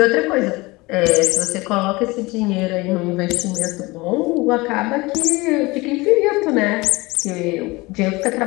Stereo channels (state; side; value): quieter; right; 22.8 dB